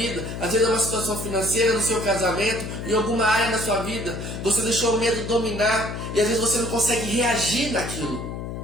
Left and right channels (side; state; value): left; noise; hum, 7 dB below the sound